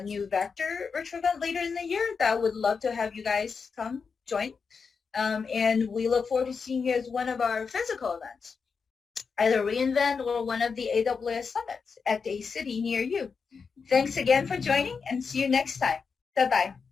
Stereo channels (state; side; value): quieter; right; 5.5 dB